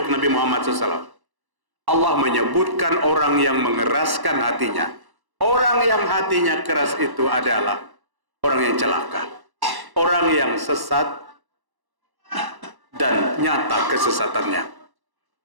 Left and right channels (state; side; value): late; left; 1.1 ms